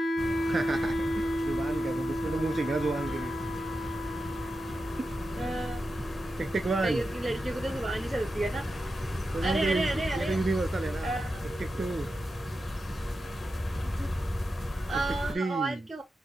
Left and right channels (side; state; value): both; normal; correlation 0.90